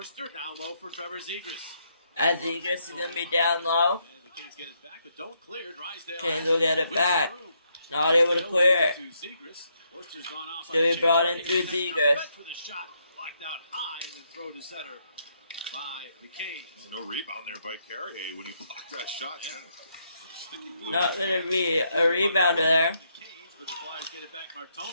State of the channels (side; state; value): both; inverted; correlation -0.76